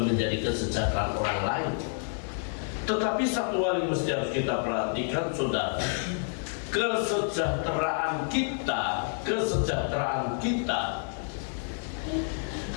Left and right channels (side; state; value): right; silent; 59 dB below the other